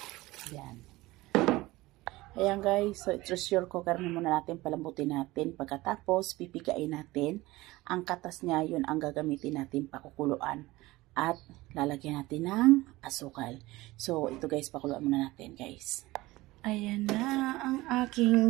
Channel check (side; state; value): left; quieter; 19.5 dB